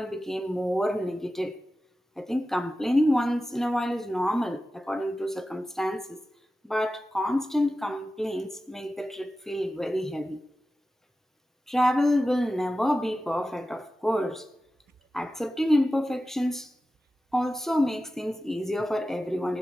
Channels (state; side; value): normal; both; correlation 0.94